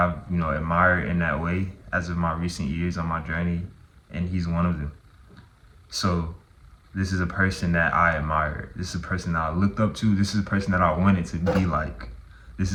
admired in that way as of my recent years on my journey, and he's one of them. So this is a person that I admired. This is a person that I looked up to. This is a person that I wanted to be like. This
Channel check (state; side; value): identical; both; correlation 1.00